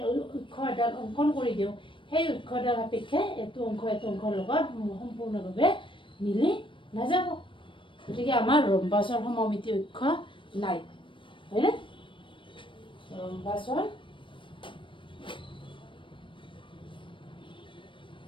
অক্ষ এডাল অংকন কৰি দিওঁ, সেই অক্ষডাল সাপেক্ষে এইটো অংশৰ লগত সম্পূৰ্ণভাৱে মিলি নাযাব। গতিকে আমাৰ ৰম্বাছৰ সমমিতি অক্ষ নাই হয়নে? ৰম্বাছৰ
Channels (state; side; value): late; right; 0.25 ms